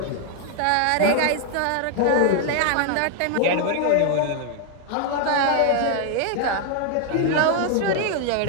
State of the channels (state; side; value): different; both; correlation 0.00